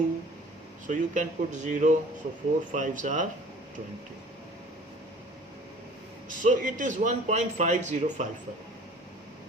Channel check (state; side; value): normal; both; correlation 0.48